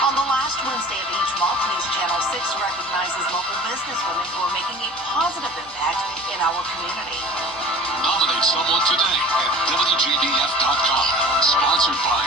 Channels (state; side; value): normal; both; correlation 0.42